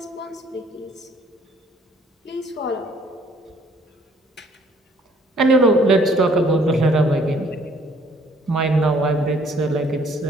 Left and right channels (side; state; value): both; normal; correlation 0.61